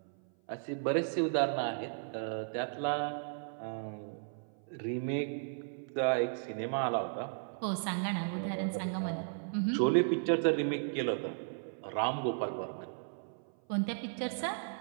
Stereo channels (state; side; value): silent; left; 54 dB below the other